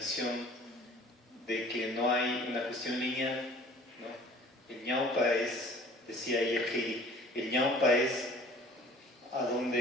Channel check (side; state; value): both; normal; correlation 0.49